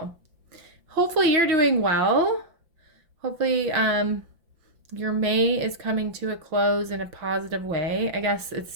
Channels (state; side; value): late; left; 5.8 ms